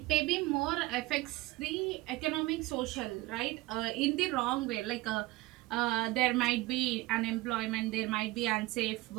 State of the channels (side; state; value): left; quieter; 19.6 dB